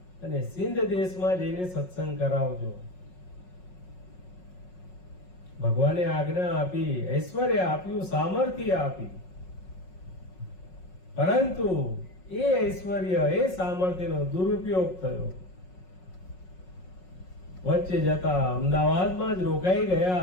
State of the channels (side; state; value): right; late; 5.5 ms